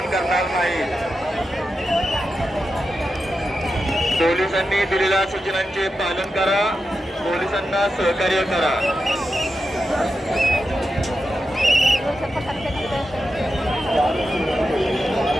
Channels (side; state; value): both; normal; correlation 0.89